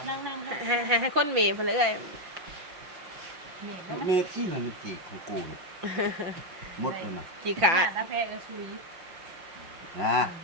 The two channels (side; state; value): left; late; 5.9 ms